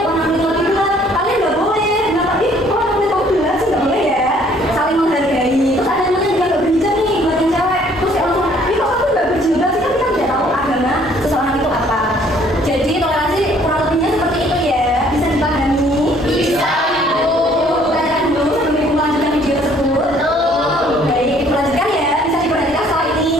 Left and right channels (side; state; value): both; normal; correlation 0.60